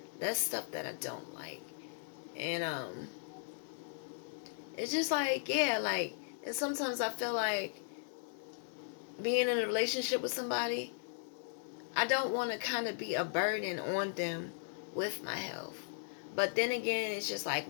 That's stuff that I don't like. And it's just like, yeah, like, and sometimes I feel like being in a relationship with somebody, I don't want to kind of be a burden on them with my health. But then again, it's just like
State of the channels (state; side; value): silent; right; digital silence